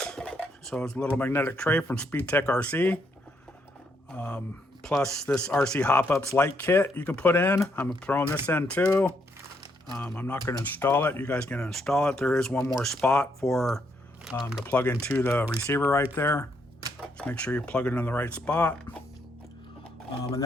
So it's a little magnetic tray from SpeedTek RC. Plus this RC Hop Ups light kit you can put in. I'm throwing this in too. I'm not going to install it. You guys can install it. There is one more spot for to plug into the receiver right there. Just make sure you plug it in the right spot. And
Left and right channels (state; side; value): normal; both; correlation 0.75